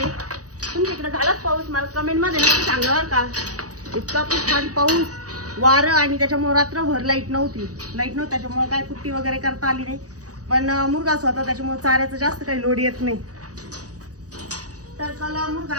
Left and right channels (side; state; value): left; late; 0.66 ms